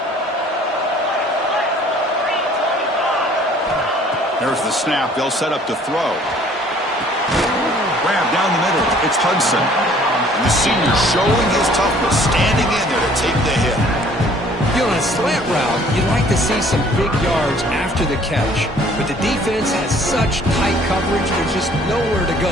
There's the snap. They'll set up to throw. Grab down the middle. It's Hudson. And the senior showing his toughness, standing in there to take the hit. You know, on a slant route, you'd like to see some big yards after the catch. But the defense has such tight coverage, there's just nowhere to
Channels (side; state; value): both; normal; correlation 0.56